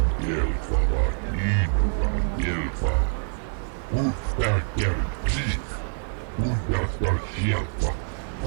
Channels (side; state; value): left; silent; 61 dB below the other